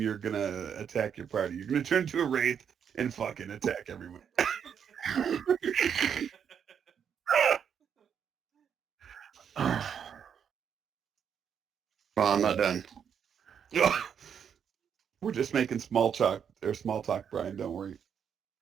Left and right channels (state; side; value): quieter; left; 7.8 dB